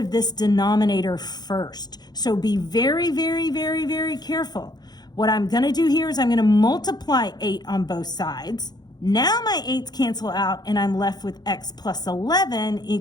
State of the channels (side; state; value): right; late; 0.20 ms